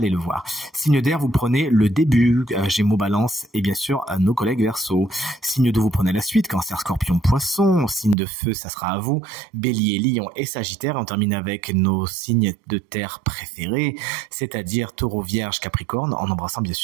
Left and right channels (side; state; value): left; drops out; at 8.2 s